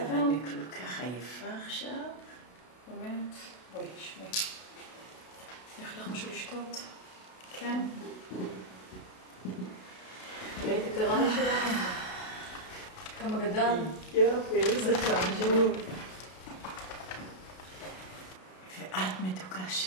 אבל אני כל כך עייפה עכשיו. באמת? בואי, שמי. יש לך משהו לשתות? כן? ראית את הרעי שלנו? כמה גדל? יופי, איזה חמוד. ואת מתוקה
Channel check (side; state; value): right; late; 32 ms